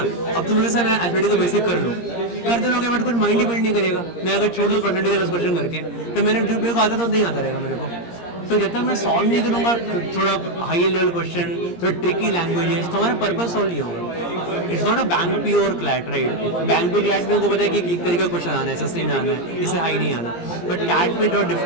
अब तुम जैसे मैं एथलेटिक को बेसिक कर लूँ, करते लोगे बट कुछ माइंड ही बिल्ड नहीं करेगा। मैं अगर छोड़ दूँ परसेंटेज 10 क्वेश्चन करके, तो मैंने जो मेरे को आता तो नहीं आता रहेगा मेरे को। तो जब तक मैं सॉल्व नहीं करूँगा थोड़ा हाई लेवल क्वेश्चन, थोड़ा ट्रिकी लैंग्वेजेस, तो हमारा पर्पस सॉल्व नहीं होगा। It's not a bank P or CLAT, right? Bank P CLAT में उनको पता है कि एक तरीके का क्वेश्चन आना है, सस्ते में आना है, इससे हाई नहीं आना। बट कैट में थोड़ा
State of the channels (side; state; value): right; late; 17 ms